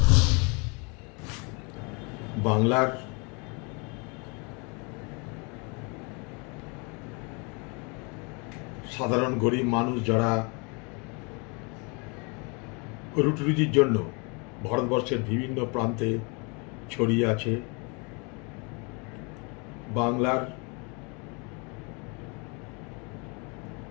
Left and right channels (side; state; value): right; quieter; 31.9 dB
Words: বাংলার সাধারণ গরিব মানুষ যারা রুটি রুজির জন্য ভারতবর্ষের বিভিন্ন প্রান্তে ছড়িয়ে আছে, বাংলার